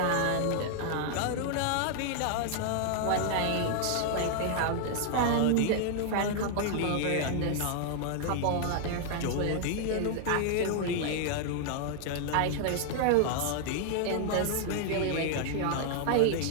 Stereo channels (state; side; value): different; both; correlation 0.00